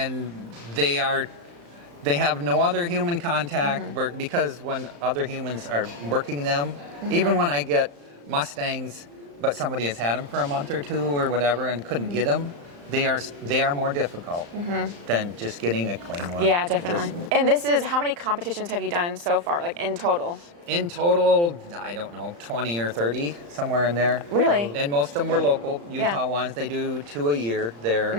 they have no other human contact because when other humans are working them, even when I get Mustangs, but somebody has had them for a month or two or whatever and couldn't get them, they are more difficult than just getting a clean one. Yeah, definitely. And this is, how many competitions have you done so far, like in total? In total, I don't know, 20 or 30, somewhere in there. Really? And most of them were local, Utah ones. They do 2 a year there.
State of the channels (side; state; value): left; late; 35 ms